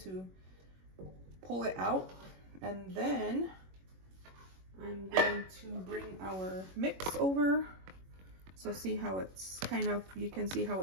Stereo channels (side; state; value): left; late; 21 ms